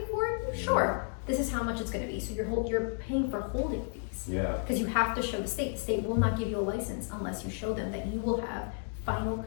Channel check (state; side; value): silent; right; 56 dB below the other